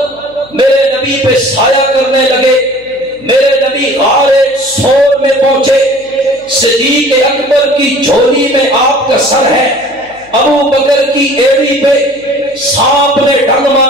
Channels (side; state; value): right; noise; hum, 28 dB below the sound